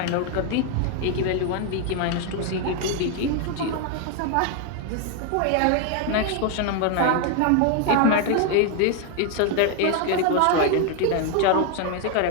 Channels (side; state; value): both; different; correlation 0.01